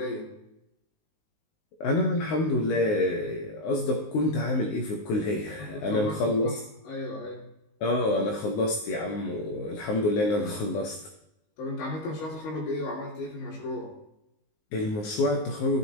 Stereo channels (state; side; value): late; right; 19 ms